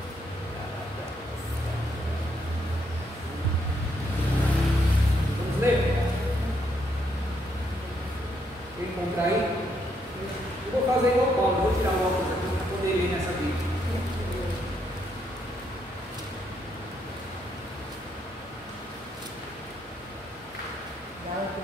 Encontrar aí, eu vou fazer igual Paulo, vou tirar o óculos aqui para poder ler nessa Bíblia.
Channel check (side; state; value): both; normal; correlation 0.75